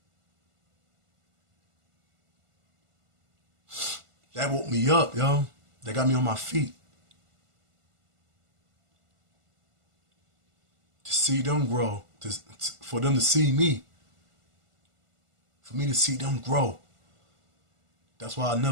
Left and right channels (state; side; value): late; left; 1.5 ms